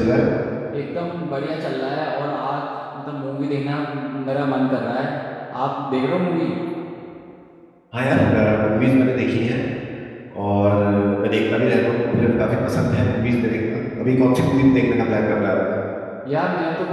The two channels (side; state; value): both; identical; correlation 1.00